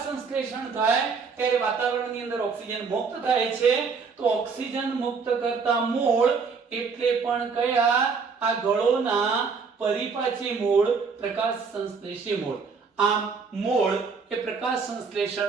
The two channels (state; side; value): quieter; left; 5.2 dB